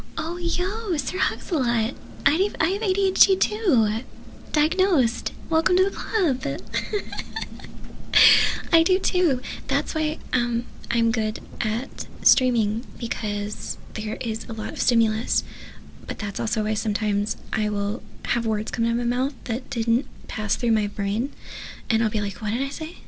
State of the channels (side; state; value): both; identical; correlation 1.00